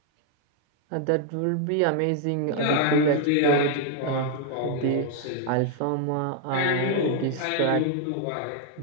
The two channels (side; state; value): both; different; correlation 0.00